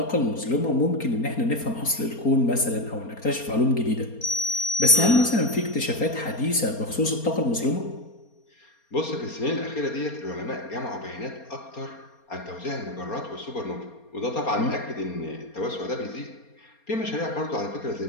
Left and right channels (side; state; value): right; late; 4.3 ms